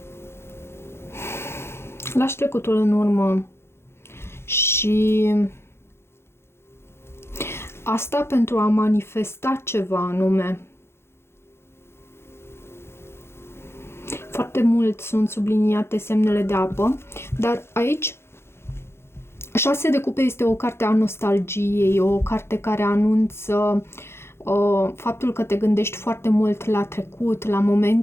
Lași trecutul în urmă și asta pentru a manifesta ceva anume. Foarte mult sunt subliniate semnele de apă, dar aici 6 de cupe este o carte a nostalgiei, o carte care anunță faptul că te gândești foarte mult la trecut, la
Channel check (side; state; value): right; late; 0.12 ms